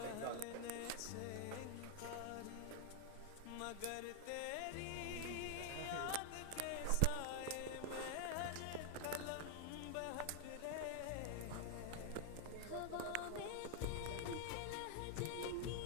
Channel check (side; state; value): both; different; correlation 0.00